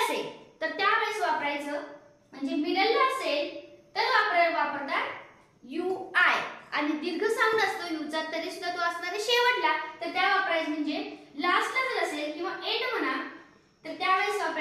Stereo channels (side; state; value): both; identical; correlation 1.00